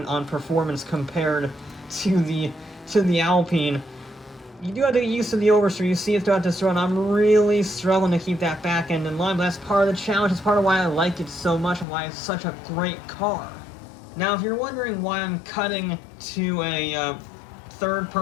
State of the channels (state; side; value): drops out; right; at 11.9 s